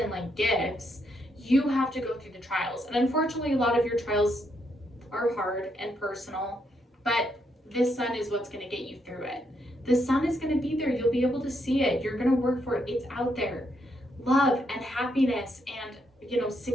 like gifts. You have to go through the trials. And unfortunately, a lot of your trials are hard and personal, but this sun is what's going to get you through it. The sun is going to be there. You'll be able to see it. You're going to work for it. It's out there. Love and happiness and, you know,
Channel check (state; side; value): normal; both; correlation 0.77